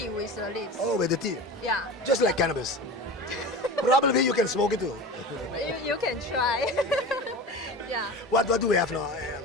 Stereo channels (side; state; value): both; normal; correlation 0.32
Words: with the leaves. Oh, with the tea. Yeah, Just like cannabis. Probably you can smoke it too. you can try. Yeah. What do we have now?